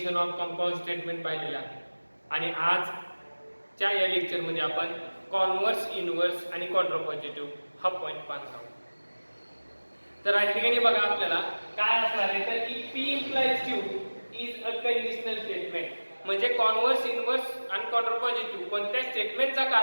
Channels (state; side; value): inverted; both; correlation -1.00